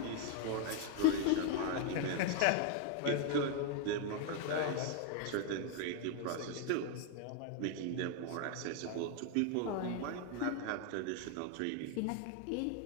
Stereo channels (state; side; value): different; both; correlation 0.00